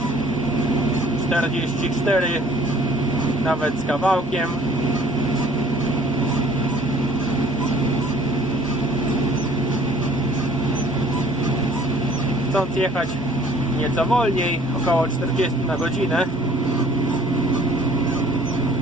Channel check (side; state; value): both; normal; correlation 0.55